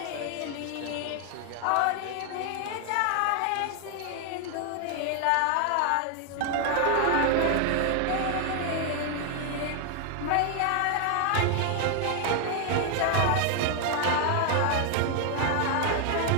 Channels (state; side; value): different; both; correlation 0.00